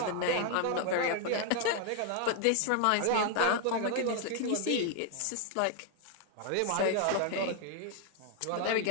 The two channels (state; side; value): different; both; correlation 0.00